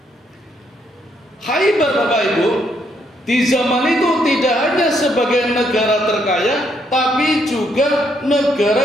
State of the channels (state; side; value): normal; both; correlation 0.73